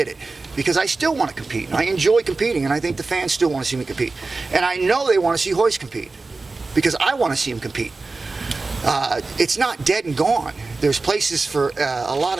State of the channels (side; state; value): left; quieter; 3.7 dB